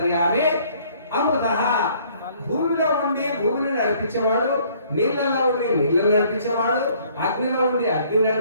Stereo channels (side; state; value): both; inverted; correlation -0.60